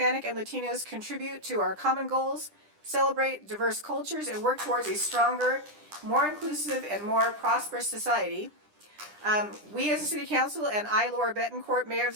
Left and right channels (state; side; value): late; left; 10 ms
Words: and Latinos contribute to our common goals, celebrate diverse cultures, and work towards a stronger, more inclusive, and more prosperous society. We as a city council and I, Laura Betancourt, Mayor of